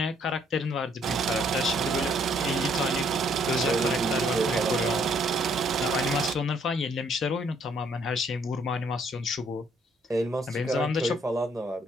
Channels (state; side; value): normal; both; correlation 0.66